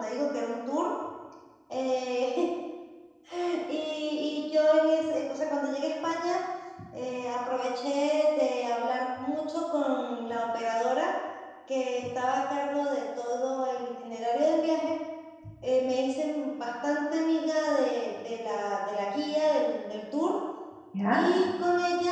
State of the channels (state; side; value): identical; both; correlation 1.00